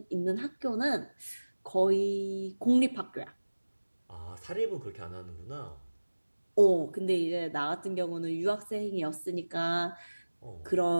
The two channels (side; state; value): both; inverted; correlation -1.00